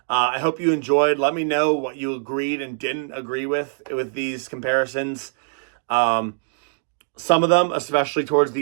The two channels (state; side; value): silent; left; digital silence